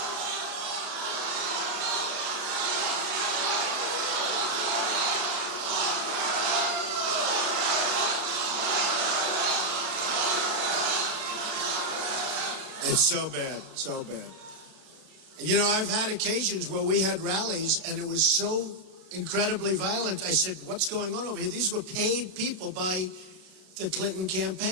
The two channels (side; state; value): left; late; 32 ms